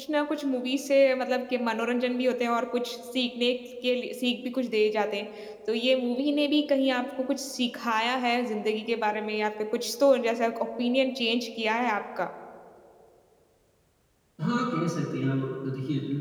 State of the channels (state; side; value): identical; both; correlation 1.00